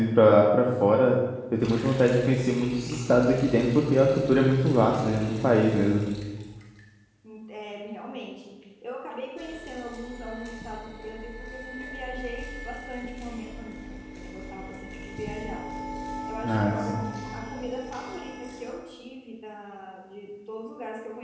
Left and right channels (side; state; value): both; identical; correlation 1.00